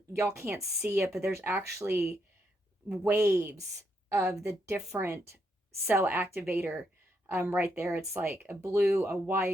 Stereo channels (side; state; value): both; normal; correlation 0.78